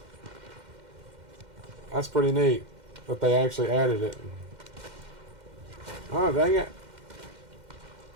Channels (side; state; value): left; late; 2.1 ms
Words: That's pretty neat that they actually added it. Oh, dang it.